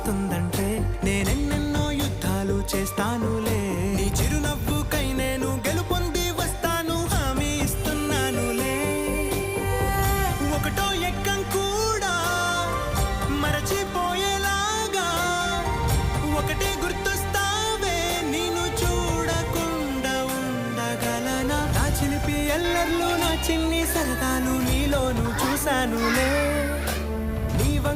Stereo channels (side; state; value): both; identical; correlation 1.00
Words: వస్తుందంటే నేనెన్నెన్నో యుద్ధాలు చేస్తానులే. నీ చిరునవ్వుకై నేను గెలుపొంది వస్తాను, హామీ ఇస్తున్నానులే. ఒకటో ఎక్కం కూడా మరచిపోయేలాగా ఒకటే గుర్తొస్తావే, నేను చూడకుండా ఉండగలనా? నా చిలిపి ఎల్లర్లు, నా చిన్ని సరదాలు నీలోను చూశానులే. నీ